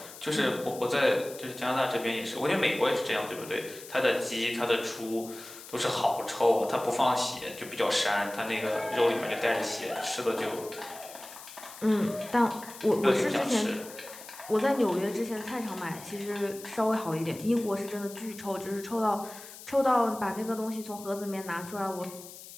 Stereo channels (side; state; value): left; noise; hiss, 15 dB below the sound